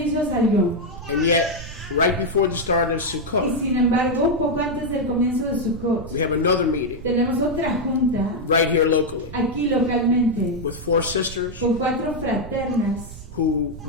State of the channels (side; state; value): right; noise; rumble, 13 dB below the sound